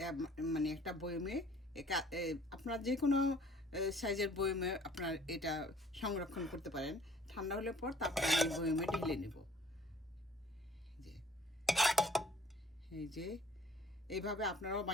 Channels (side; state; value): both; normal; correlation 0.55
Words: মানে একটা বয়মে আপনার যে কোনো সাইজের বয়মে আপনার এটা সংরক্ষণ করতে পারেন। ঠান্ডা হলে পর তারপর আমি বয়মে ঢেলে নেব। যে এই যে এইভাবে আপনারাও